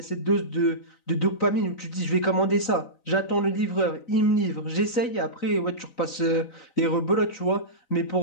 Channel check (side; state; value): right; late; 3.9 ms